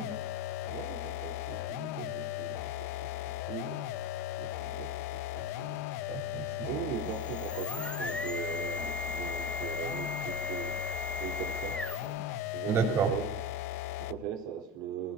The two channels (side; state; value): both; normal; correlation 0.20